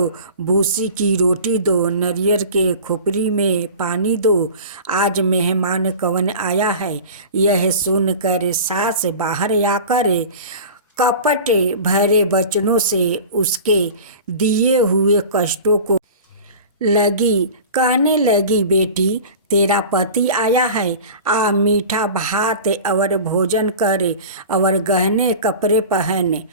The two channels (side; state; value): both; inverted; correlation -0.37